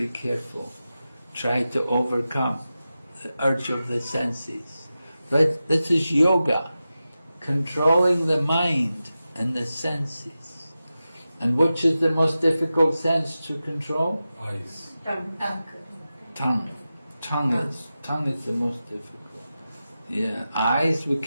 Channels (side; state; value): both; inverted; correlation -0.93